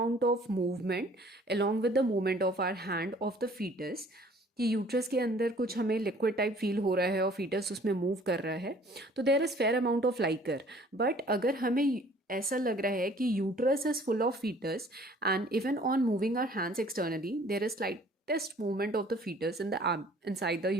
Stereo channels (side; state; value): both; normal; correlation 0.54